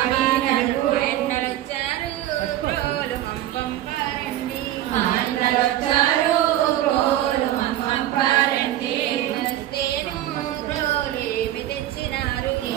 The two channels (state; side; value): quieter; left; 13.4 dB